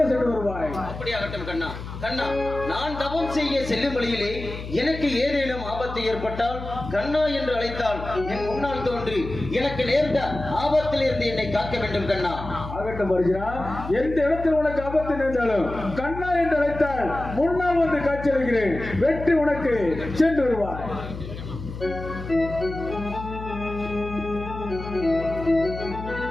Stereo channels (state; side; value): noise; left; hum, 10 dB below the sound